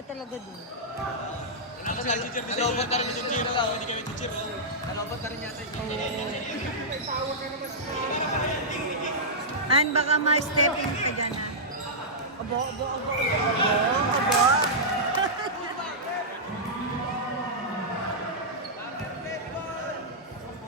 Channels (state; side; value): normal; both; correlation -0.12